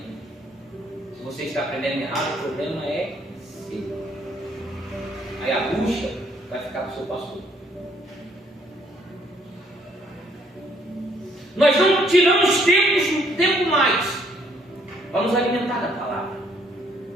Se você está aprendendo errado, o problema é seu. Aí a bucha vai ficar para o seu pastor. Nós não tiramos tempo mais para nos alimentar da palavra.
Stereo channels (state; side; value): normal; both; correlation 0.66